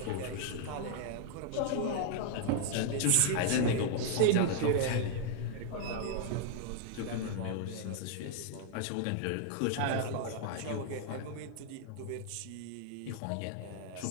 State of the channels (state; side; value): different; both; correlation 0.00